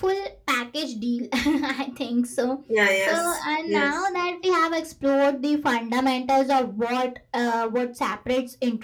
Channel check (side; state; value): both; identical; correlation 1.00